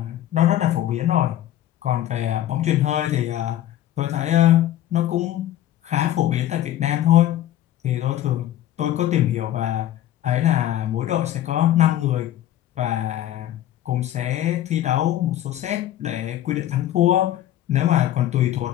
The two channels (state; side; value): quieter; right; 12.6 dB